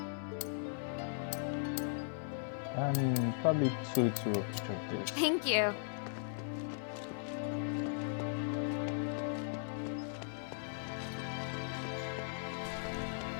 And probably 2 of each of this. Thank you.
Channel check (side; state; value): right; silent; digital silence